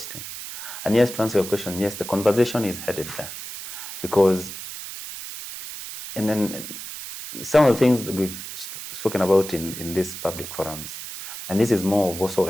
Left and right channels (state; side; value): noise; right; hiss, 10 dB below the sound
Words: And yes, to answer your question, yes, the conversation is headed there, because, and then some of the things we've spoken about in these public forums, and this is more of also